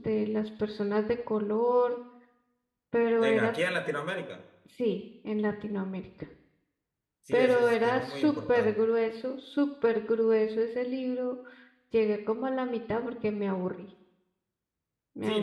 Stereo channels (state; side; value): identical; both; correlation 1.00